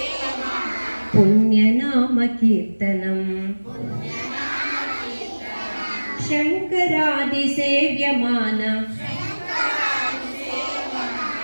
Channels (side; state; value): both; inverted; correlation -1.00